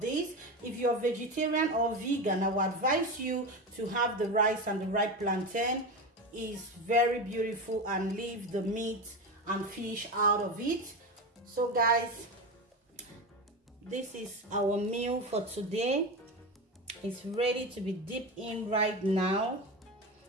these. If you're vegetarian or vegan, I would advise you to have the rice and the ripe plantain. It's very beautiful, and leave the meat and fish out of it. So guys, this is our meal for today. It's ready to be dipped in right now.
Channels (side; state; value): both; normal; correlation 0.21